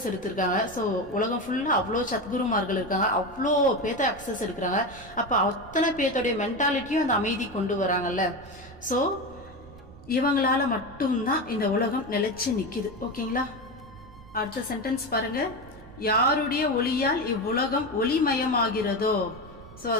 எடுத்திருக்காங்க. ஸோ உலகம் ஃபுல்லாக அவ்வளோ சத்குருமார்கள் இருக்காங்க, அவ்வளோ பேத்த அக்சஸ் எடுக்கிறாங்க. அப்போ அத்தனை பேர்த்தோடைய மென்டாலிட்டியும் அந்த அமைதி கொண்டு வராங்கல்ல. ஸோ இவங்களால மட்டும்தான் இந்த உலகம் நிலைச்சு நிற்கிது. ஓகேங்களா? அடுத்த சென்டென்ஸ் பாருங்க. யாருடைய ஒளியால் இவ்வுலகம் ஒளிமயமாகிறதோ, ஸோ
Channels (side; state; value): right; noise; rumble, 19 dB below the sound